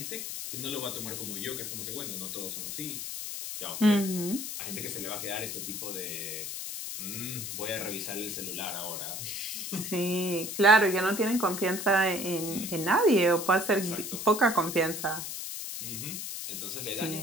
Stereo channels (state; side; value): noise; left; hiss, 6 dB below the sound